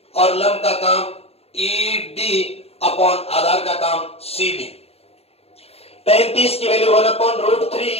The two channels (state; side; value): late; right; 0.29 ms